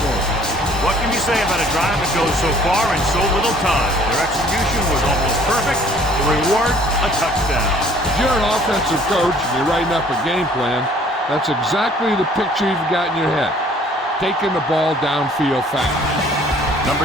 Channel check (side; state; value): both; normal; correlation 0.56